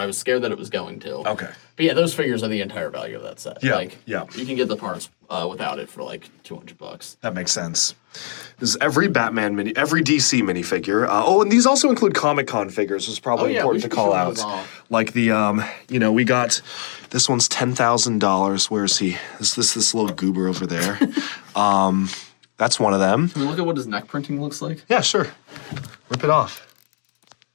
I was scared that it was going to. Okay. But yeah, those figures are the entire value of that set. Yeah, Like, yeah. You can get the parts without it for like $200. That makes sense. There's every every DC minifigure. And these also include Comic-Con figures, which is probably we important to should call show out. those off. Like the, we got, this one's $10,000. Where is he? This little goober over there. That's one of them. Can we look at what his neck printing looks like? Yeah, sure. Rip it off.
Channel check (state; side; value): silent; right; digital silence